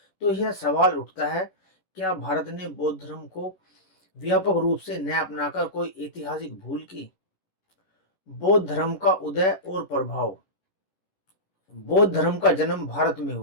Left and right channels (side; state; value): right; late; 11 ms